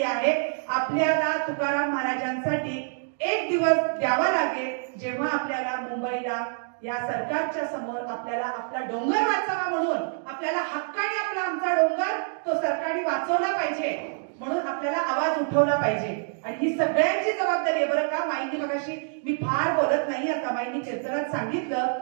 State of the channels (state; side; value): silent; left; digital silence